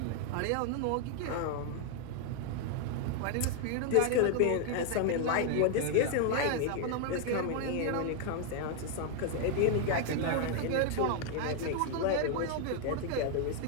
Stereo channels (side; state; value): both; different; correlation 0.00